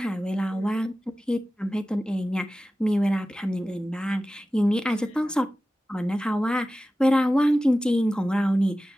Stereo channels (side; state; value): both; normal; correlation 0.95